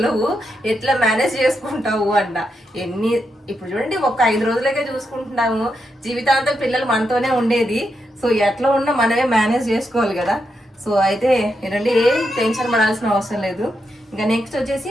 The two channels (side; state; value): both; normal; correlation 0.84